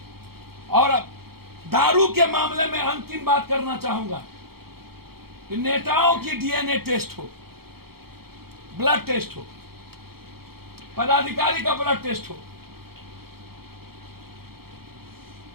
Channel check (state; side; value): late; left; 0.95 ms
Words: और दारू के मामले में अंतिम बात करना चाहूंगा कि नेताओं की डीएनए टेस्ट हो, ब्लड टेस्ट हो, पदाधिकारी का ब्लड टेस्ट हो,